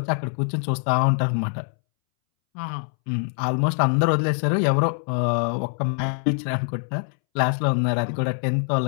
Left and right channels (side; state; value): right; silent; 63 dB below the other